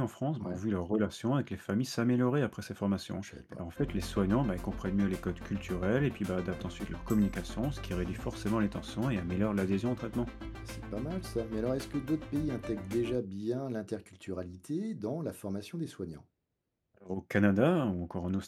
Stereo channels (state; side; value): identical; both; correlation 1.00